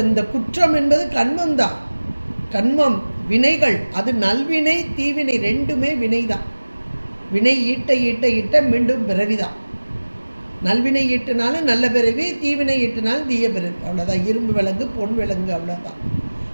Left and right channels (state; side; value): inverted; both; correlation -1.00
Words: இந்த குற்றம் என்பது கண்மம் தான். கண்மம் வினைகள், அது நல்வினை தீவினை ரெண்டுமே வினை தான். வினை ஈட்ட ஈட்ட ஈட்ட மீண்டும் பிறவிதான். நல்வினை ஈட்டினாலும் நல்ல பிறவி, தீவினை ஈட்டினாலும் தீய பிறவி. அவ்வளோதான். இரும்பு விலங்கு பொன் விலங்கு, அவ்வளோதான்.